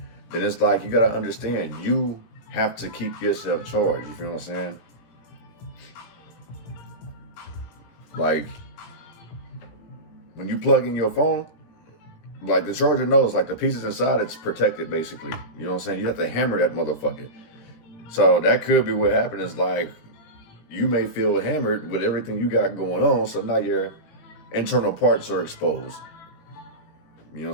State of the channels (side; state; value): right; late; 17 ms